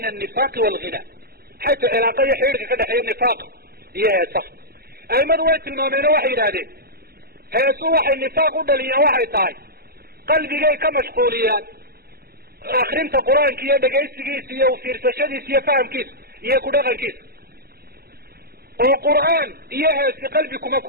an-nifaaq wal-ghina xayta cilaaqa iyo xiriirka ka dhaxeeya nifaaq iyo heesaha aimadu way tilmaameen oo waxay yidhaahdeen heesu waxay nifaaq u dhaliyaan waxay tahay qalbigay ka mashquuliyaan akrinta qur-aanka iyo dhegaysigiisa iyo fiirsashadiisa iyo fahamkiisa iyo ku dhaqankiisa oo qur'aan iyo heesi qalbi kuma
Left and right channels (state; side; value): late; left; 0.45 ms